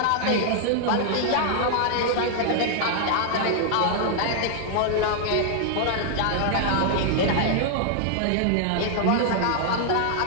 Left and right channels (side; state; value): both; different; correlation 0.00